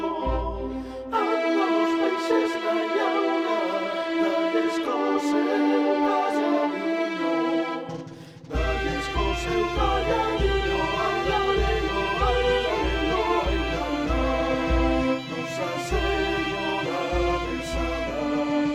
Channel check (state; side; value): identical; both; correlation 1.00